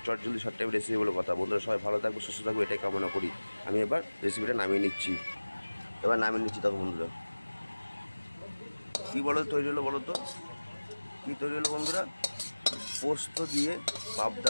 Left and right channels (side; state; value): both; inverted; correlation -1.00